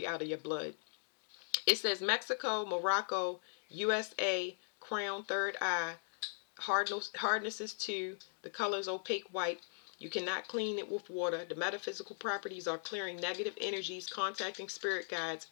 out of your blood. It says Mexico, Morocco, USA, crown, third eye, hardness is 2, the color is opaque white. You cannot clean it with water. The metaphysical properties are clearing negative energies, contacting spirit guides,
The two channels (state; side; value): silent; right; digital silence